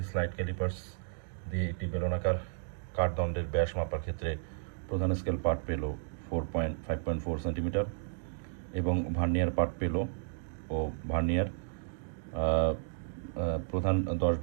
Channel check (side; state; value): left; silent; digital silence